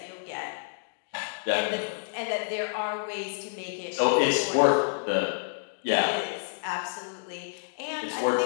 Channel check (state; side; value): silent; right; digital silence